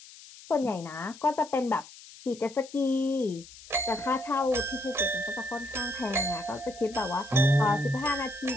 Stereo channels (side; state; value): left; noise; hiss, 19 dB below the sound